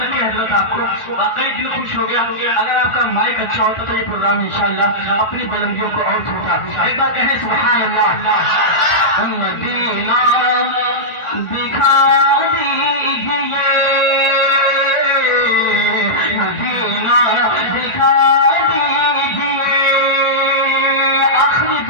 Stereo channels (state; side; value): late; right; 1.4 ms